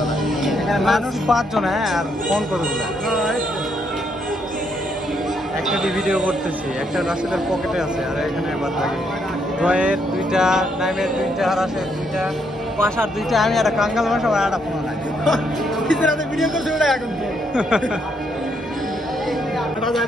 মানুষ 5 জন, হ্যাঁ, আর ফোন কতগুলো, একটা ভিডিও করতেছি, একটা রাশেদের পকেটে আছে, আর এখানে বাদ থাকে জয়ের 2টা, নাইমের 2টা, আর রাশের 2টা, পাশার 2টা, আমি একটা কাঙ্গাল ভাষা আর একটা ফোন নাই। ভিডিও করছে ওটা এখন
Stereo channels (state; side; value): normal; both; correlation 0.74